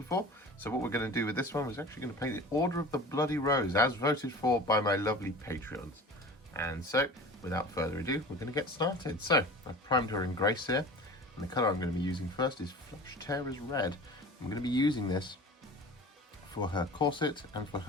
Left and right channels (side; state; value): both; normal; correlation 0.38